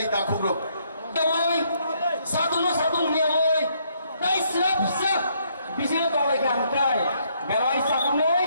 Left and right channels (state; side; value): inverted; both; correlation -0.70